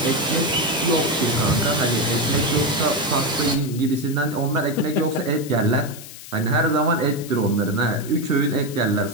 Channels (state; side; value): noise; left; hiss, 15 dB below the sound